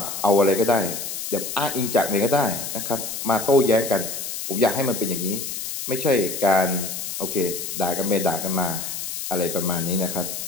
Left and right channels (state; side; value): noise; left; hiss, 6 dB below the sound